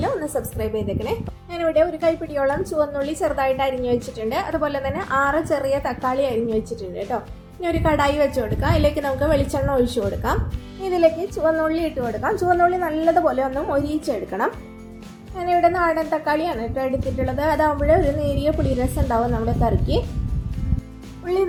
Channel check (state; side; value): identical; both; correlation 1.00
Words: ഒന്ന് സബ്സ്ക്രൈബ് ചെയ്തേക്കണേ. ഞാനിവിടെ ഒരു കൈപ്പിടിയോളം ചുവന്നുള്ളി ചെറുതായിട്ട് അരിഞ്ഞു വെച്ചിട്ടുണ്ട്. അതുപോലെ തന്നെ 6 ചെറിയ തക്കാളി അരിഞ്ഞു വെച്ചിട്ടുണ്ട് കേട്ടോ. ഇനി ഒരു കടായി വെച്ച് കൊടുക്കാം. അതിലേക്ക് നമുക്ക് വെളിച്ചെണ്ണ ഒഴിച്ചു കൊടുക്കാം. ഇതിലേക്ക് ചുവന്നുള്ളി ഇട്ട് കൊടുക്കാം. ചുവന്നുള്ളി നല്ലതുപോലെ ഒന്ന് മൊരിയിച്ചെടുക്കണം. ഞാനിവിടെ നാടൻ തക്കാളിയാണ് കേട്ടോ എടുത്തിട്ടുള്ളത്. അതാകുമ്പോൾ ഒരു നേരിയ പുളിരസം ഉണ്ടാവും നമ്മുടെ കറിക്ക്. ഉള്ളി